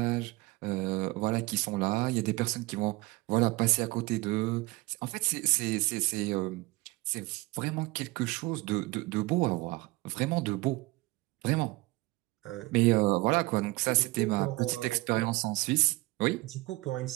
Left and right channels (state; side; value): quieter; left; 22.0 dB